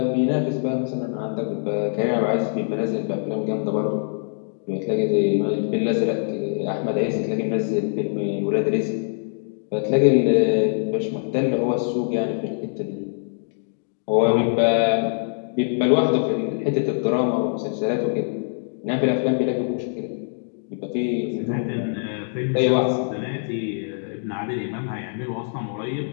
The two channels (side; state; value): right; silent; digital silence